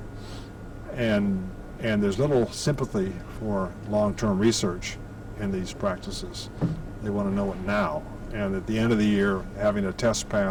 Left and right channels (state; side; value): identical; both; correlation 1.00